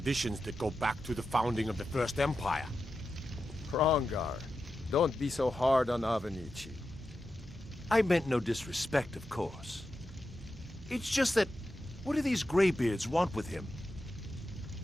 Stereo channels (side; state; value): both; normal; correlation 0.90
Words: that go back to the founding of the First Empire. Hrongar, don't be so hard on Avenici. I meant no disrespect, of course. It's just that, what do these Greybeards want with him?